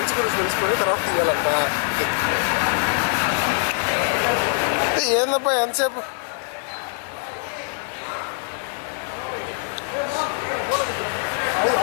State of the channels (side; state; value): right; silent; 63 dB below the other